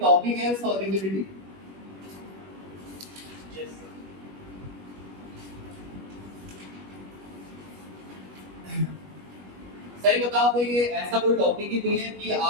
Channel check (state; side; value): late; left; 21 ms